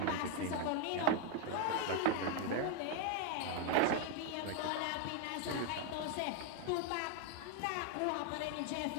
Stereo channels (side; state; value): both; different; correlation 0.00